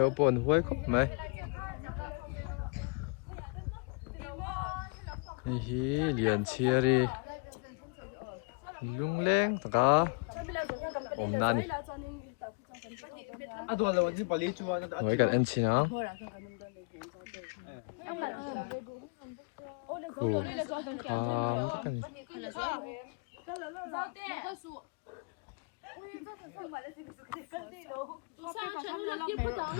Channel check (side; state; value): right; quieter; 32.2 dB